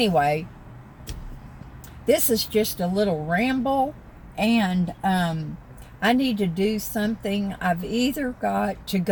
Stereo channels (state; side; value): identical; both; correlation 1.00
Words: this is just a little ramble, and I need to do something. I've either got to